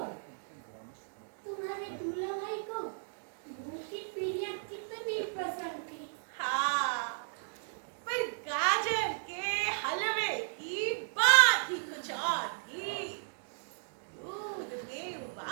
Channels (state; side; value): silent; left; digital silence